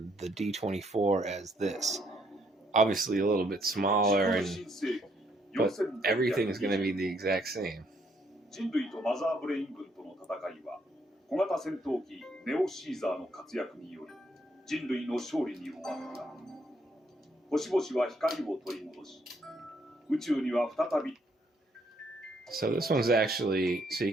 the D24 as this. Obviously a little bit smaller, but everything is going to be the exact same. 人類とマザーブレイン軍との戦いは小型戦闘機ネオシーザーの活躍により人類の勝利に終わった。星々は光を取り戻し、宇宙には再び。 So this one's actually, so you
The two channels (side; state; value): both; normal; correlation 0.70